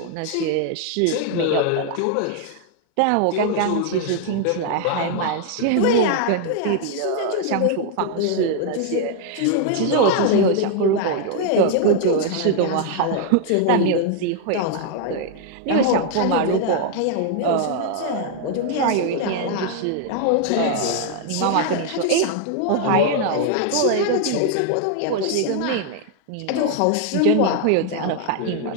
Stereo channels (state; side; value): different; both; correlation 0.00